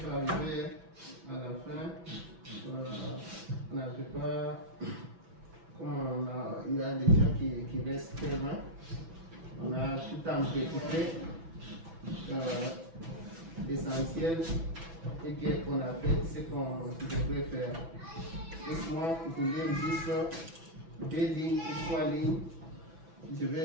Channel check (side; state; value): left; late; 6.0 ms